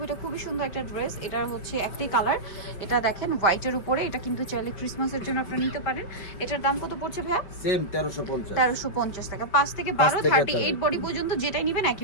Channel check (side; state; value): right; late; 5.1 ms